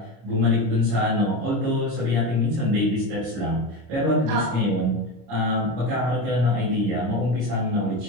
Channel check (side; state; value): left; late; 26 ms